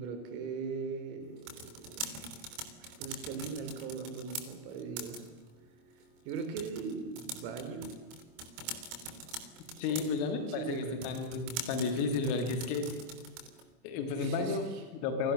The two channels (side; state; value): left; late; 25 ms